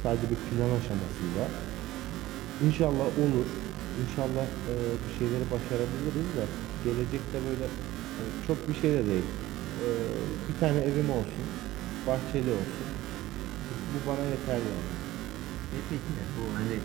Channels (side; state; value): left; quieter; 16.5 dB